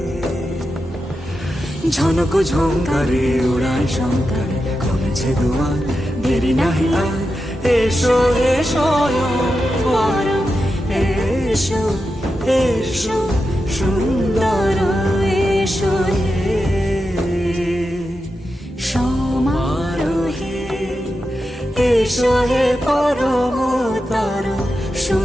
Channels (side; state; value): both; normal; correlation 0.89